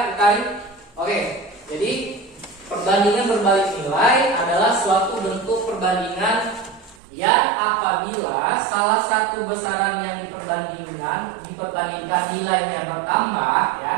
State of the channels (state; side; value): drops out; left; at 7.0 s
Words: Karin. Oke, jadi perbandingan berbalik nilai adalah suatu bentuk perbandingan yang apabila salah satu besaran yang diperbandingkan nilainya bertambah ya,